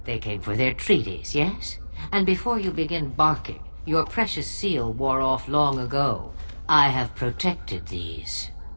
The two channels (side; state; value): both; inverted; correlation -1.00